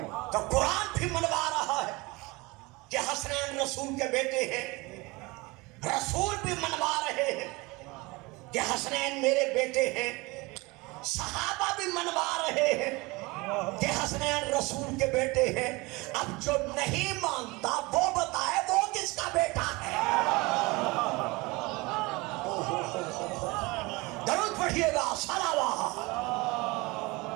تو قرآن بھی منوا رہا ہے کہ حسنین رسول کے بیٹے ہیں، رسول بھی منوا رہے ہیں کہ حسنین میرے بیٹے ہیں، صحابہ بھی منوا رہے ہیں کہ حسنین رسول کے بیٹے ہیں۔ اب جو نہیں مانتا وہ بتائے وہ کس کا بیٹا ہے۔ درود پڑھیے گا، صلوات۔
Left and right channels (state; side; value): quieter; left; 24.1 dB